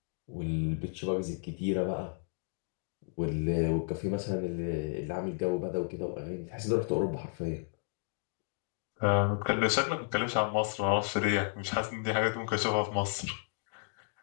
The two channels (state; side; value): silent; right; 56 dB below the other